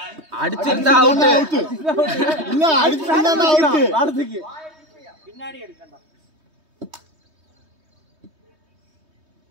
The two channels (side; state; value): left; late; 3.2 ms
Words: அடிச்சிருந்தா அவுட். இல்ல அடிச்சிருந்தா அவுட். ஆடுதுக்கு பின்னாடி அடிச்சடா.